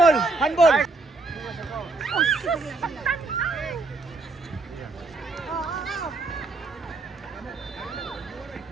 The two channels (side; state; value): left; quieter; 3.4 dB